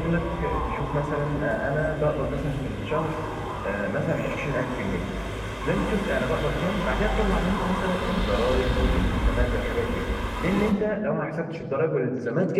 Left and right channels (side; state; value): both; identical; correlation 1.00